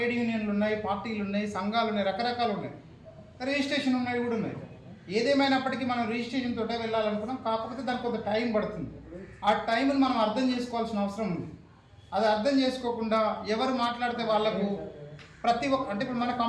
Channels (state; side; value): identical; both; correlation 1.00